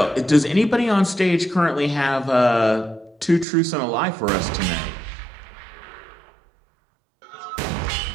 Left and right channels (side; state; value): left; drops out; at 3.5 s